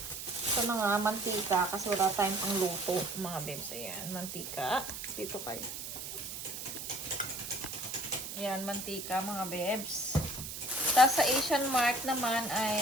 ito na nga, mantika. Kasi wala tayong pang luto mga bebs. Ayan, mantika. Dito kayo. Ayan, mantika mga bebs. Tapos sa Asian Mart naman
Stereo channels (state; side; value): noise; right; hiss, 7 dB below the sound